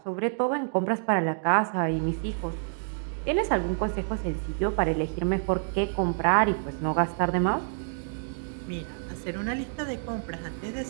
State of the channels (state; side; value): silent; left; digital silence